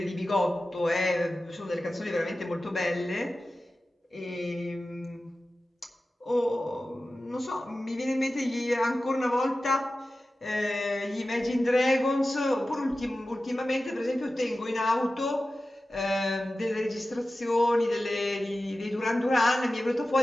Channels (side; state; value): both; normal; correlation 0.95